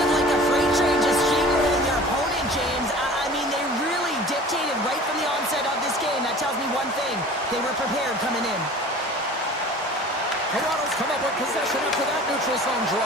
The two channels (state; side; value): normal; both; correlation 0.43